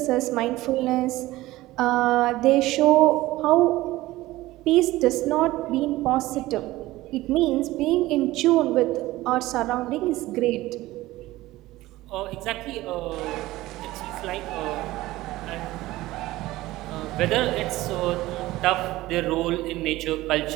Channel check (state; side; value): quieter; left; 17.6 dB